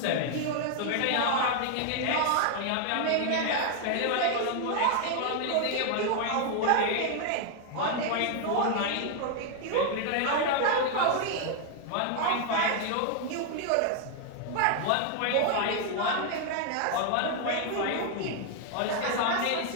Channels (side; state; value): both; different; correlation 0.00